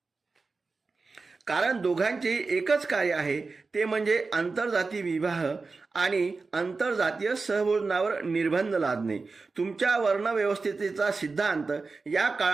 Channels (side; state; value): left; quieter; 4.1 dB